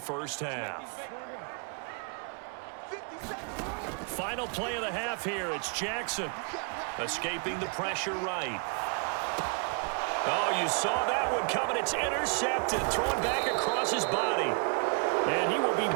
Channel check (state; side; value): quieter; left; 37.9 dB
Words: half. Final play of the half here. It's Jackson escaping the pressure right. Oh, you saw that one coming. It's intercepted, thrown back across his body. And he will be